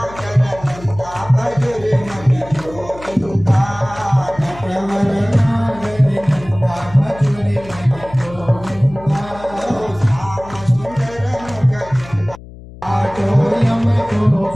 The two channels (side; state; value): left; noise; hum, 17 dB below the sound